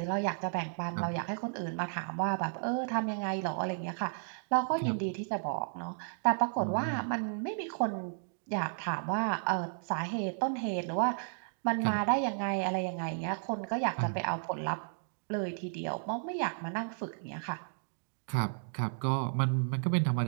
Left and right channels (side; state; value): left; silent; digital silence